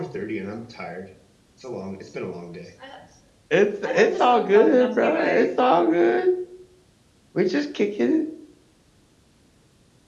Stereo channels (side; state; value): both; identical; correlation 1.00